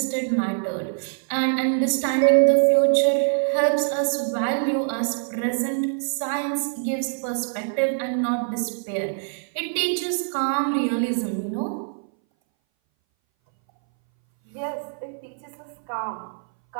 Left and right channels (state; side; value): silent; left; 60 dB below the other